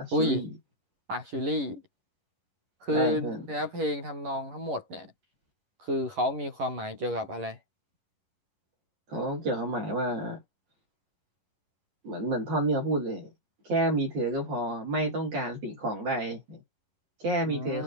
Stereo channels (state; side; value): late; left; 11 ms